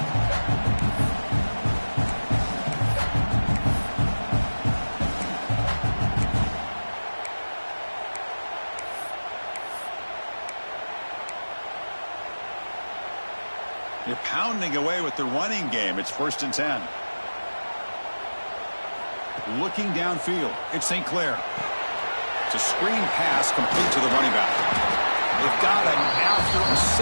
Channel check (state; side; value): inverted; both; correlation -1.00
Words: You're pounding away with the running game. It's 1st and 10. Looking downfield. It's St. Clair. It's a screen pass complete to the running back. They've got him after a